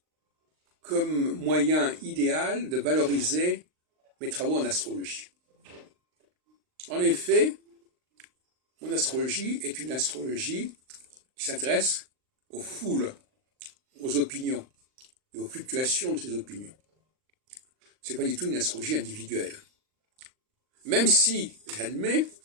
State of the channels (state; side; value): late; left; 39 ms